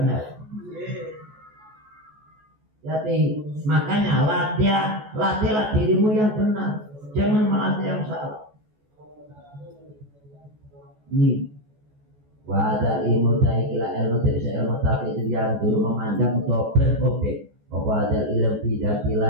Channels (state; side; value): late; left; 14 ms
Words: Jadi makanya latihlah dirimu yang benar, jangan melatih yang salah. Ini wadah ilmu taikila ilmu dari ilmu tapi itu yang dulu memandang untuk berobjek. Wadah ilmu tidak